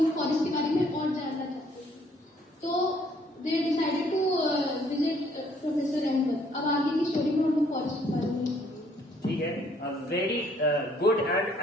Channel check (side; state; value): both; normal; correlation 0.63